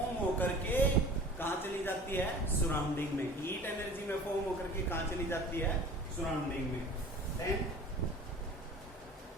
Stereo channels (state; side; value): normal; both; correlation 0.43